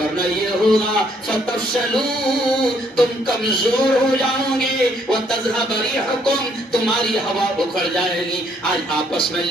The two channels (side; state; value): both; normal; correlation 0.68